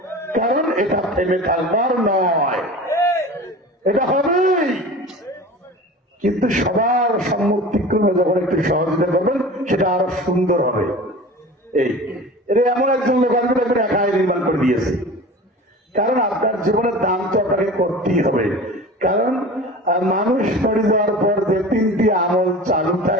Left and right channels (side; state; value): both; normal; correlation 0.37